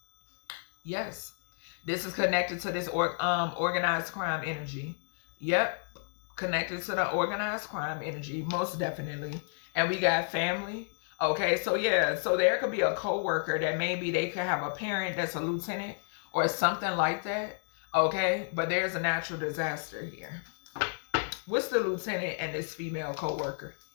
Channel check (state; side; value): silent; right; digital silence